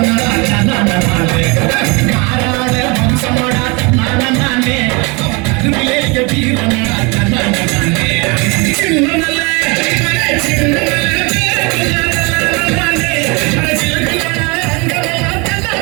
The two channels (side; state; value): left; quieter; 29.0 dB